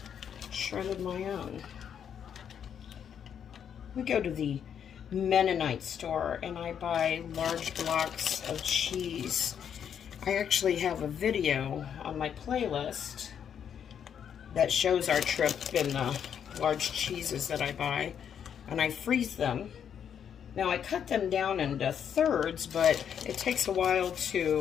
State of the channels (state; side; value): quieter; right; 8.3 dB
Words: shredded my own. We go to the Mennonite store and I buy large blocks of cheese. I actually have a video on my playlist that shows our trip and the large cheeses that I buy, and I freeze them. Now I cut them down into thirds, but it takes a while